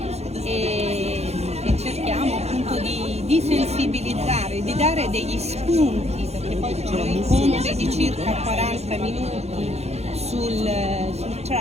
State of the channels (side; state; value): left; late; 0.31 ms